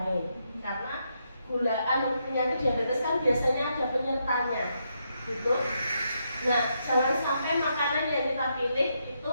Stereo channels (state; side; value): inverted; both; correlation -0.80